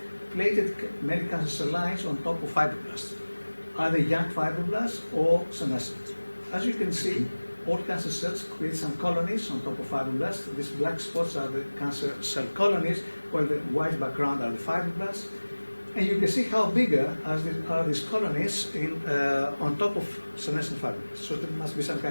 plated many cancer cell lines on top of fibroblasts, either young fibroblasts or senescent. As you can see, all cancer cells create some colonies on top of fibroblasts. These black spots are the cancer cell colonies, while the white background are the fibroblasts. And you can see how bigger are these colonies on top of senescent fibroblasts. So there must be some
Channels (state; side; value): inverted; both; correlation -1.00